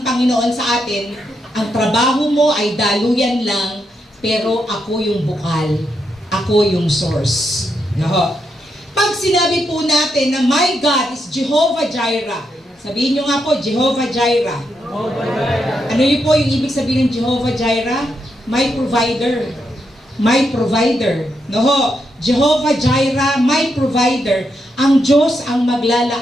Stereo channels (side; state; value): both; normal; correlation 0.82